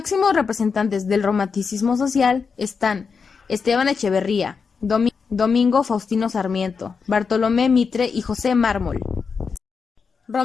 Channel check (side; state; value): right; quieter; 5.5 dB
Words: representantes del romanticismo social están Esteban Echeverría, Domingo Faustino Sarmiento, Bartolomé Mitre y José Mármol.